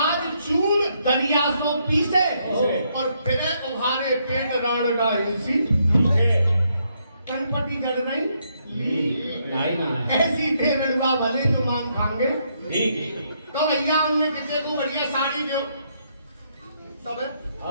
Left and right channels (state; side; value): inverted; both; correlation -0.75